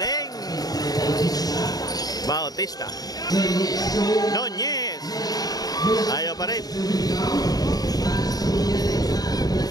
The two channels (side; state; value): right; late; 0.18 ms